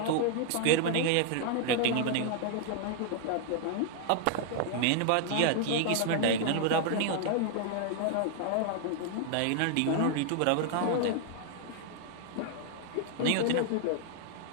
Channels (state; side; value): different; both; correlation 0.00